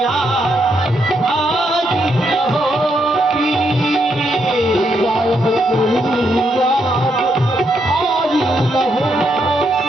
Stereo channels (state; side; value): normal; both; correlation 0.78